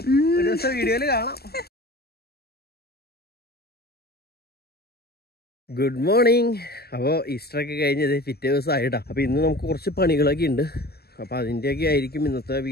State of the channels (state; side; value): late; right; 0.46 ms